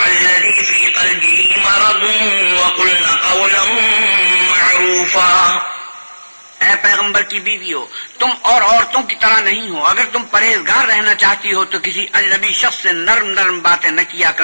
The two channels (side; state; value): both; inverted; correlation -1.00